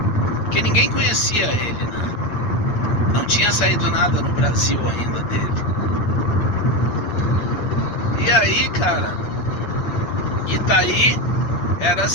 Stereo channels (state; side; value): late; right; 8.7 ms